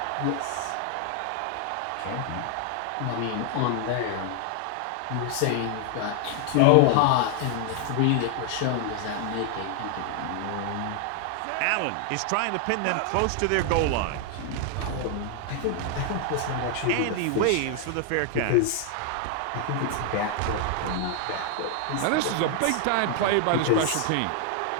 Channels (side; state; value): both; different; correlation 0.00